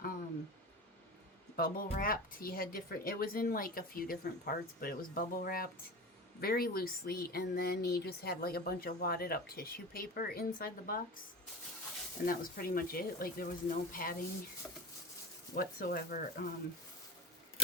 bubble wrapped. He had it was in like a few different parts, but it was bubble wrapped very loosely, and then he just had like a bunch of wadded up tissue paper inside the box, and that was pretty much it. Like there was no padding whatsoever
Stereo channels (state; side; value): normal; both; correlation 0.30